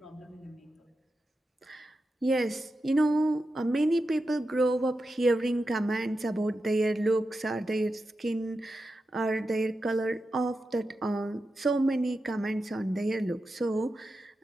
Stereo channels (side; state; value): both; normal; correlation 0.90